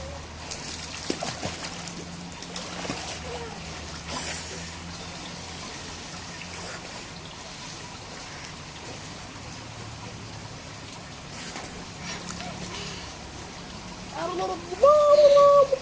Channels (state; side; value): identical; both; correlation 1.00